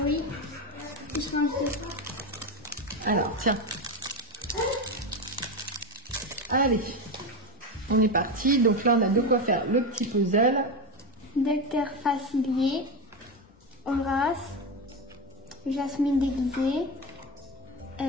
Oui. Alors, tiens. Allez, on est parti. Donc là, on a de quoi faire le petit puzzle. Docteur Facilier, Horace, Jasmine déguisée,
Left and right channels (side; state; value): both; normal; correlation 0.16